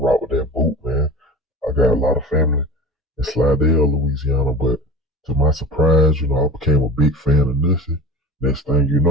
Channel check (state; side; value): normal; both; correlation 0.36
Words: with that boot, man. I got a lot of family in Slidell, Louisiana, but to my surprise, I became a big fan of Nussie. Next thing you